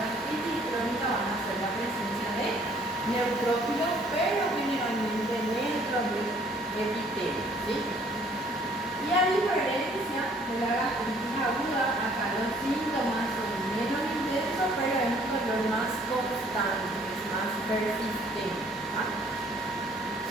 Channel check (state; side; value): normal; both; correlation 0.59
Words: gastritis crónica van a ser la presencia de neutrófilos, pero generalmente dentro del epitelio, ¿sí? Y a diferencia de la gastritis aguda, acá los síntomas son menos intensos, pero es un dolor más constante, es más persistente.